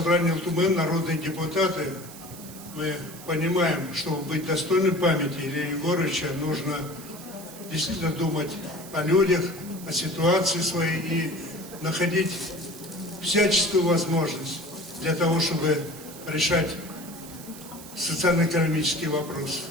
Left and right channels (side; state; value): right; noise; hiss, 16 dB below the sound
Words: ЛТУМЭН, народные депутаты, мы понимаем, чтобы быть достойным памяти Ильи Егоровича, нужно действительно думать о людях, о ситуации своей и находить всяческую возможность для того, чтобы решать социально-экономические вопросы.